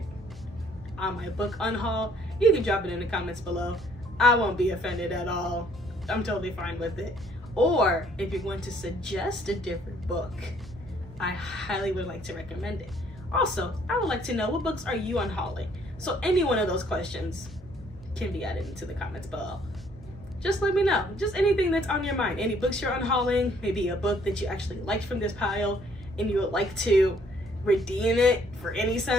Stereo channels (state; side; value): normal; both; correlation 0.63